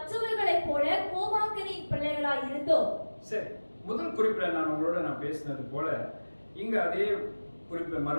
போல கோபாக்கனின் பிள்ளைகளாய் இருந்தோம். சரி, முதல் குறிப்பில் நான் பேசினது போல இங்க அதே குறிப்பு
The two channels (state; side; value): inverted; both; correlation -1.00